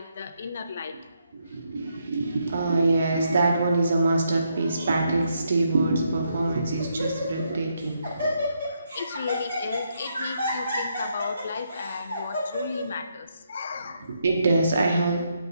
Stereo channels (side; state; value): both; inverted; correlation -0.78